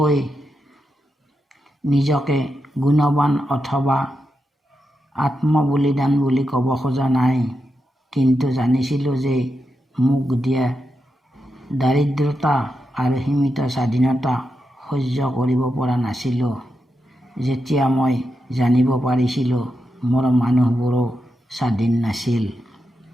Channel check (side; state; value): both; normal; correlation 0.87